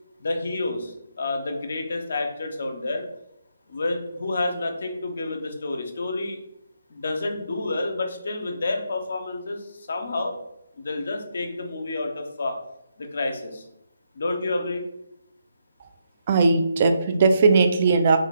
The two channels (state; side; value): inverted; both; correlation -0.79